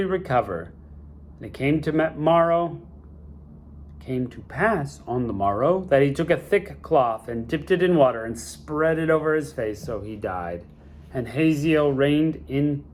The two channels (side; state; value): both; identical; correlation 1.00